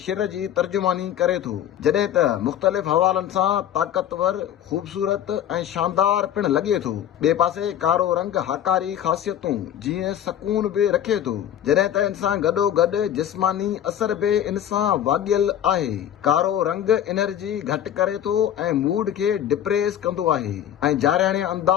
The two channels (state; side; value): quieter; right; 10.6 dB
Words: शिर जी तर्जुमानी करे थो, जॾहिं त मुख़्तलिफ़ हवालनि सां ताक़तवर, ख़ूबसूरत ऐं शानदार पिणु लॻे थो। ॿिए पासे कारो रंग हाकारी ख़ासियतूं जीअं सकून बि रखे थो, जॾहिं त इन सां गॾोगॾु जिस्मानी असर बि इन सां वाॻियल आहे। कारो रंग एनर्जी घटि करे थो ऐं मूड खे डिप्रेस कंदो आहे ऐं जारियाणे